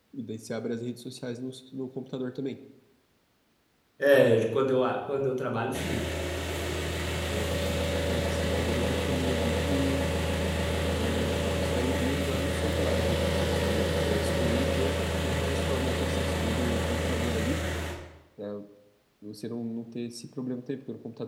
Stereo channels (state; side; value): identical; both; correlation 1.00